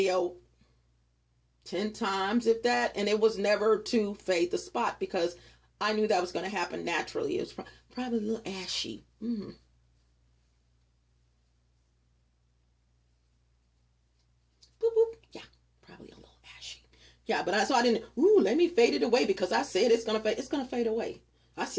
10 times, if that, and it was never to fade the spot because I knew that was going to happen naturally. It was probably a little ashy. Boop, boop. Yeah, probably a little ashy. Yeah, but I didn't, let me fade it away because I said it's going to fade. It's going to fade away. I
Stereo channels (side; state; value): both; identical; correlation 1.00